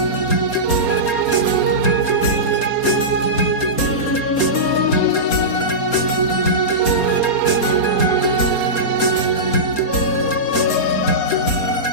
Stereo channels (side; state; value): right; late; 4.2 ms